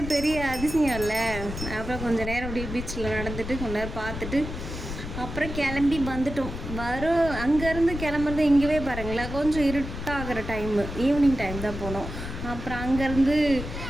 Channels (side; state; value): left; noise; rumble, 7 dB below the sound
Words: பெரிய அதிசயம் இல்லை. அப்புறம் கொஞ்சம் நேரம் அப்படியே பீச்சில் நடந்துட்டு கொஞ்ச நேரம் பார்த்துட்டு அப்புறம் கிளம்பி வந்துட்டோம். அங்கேருந்து கிளம்புறது இங்கேவே பாருங்களேன், கொஞ்சம் இருட்டாகிற டைமு, ஈவினிங் டைம் தான் போனோம். அப்புறம் அங்கேருந்து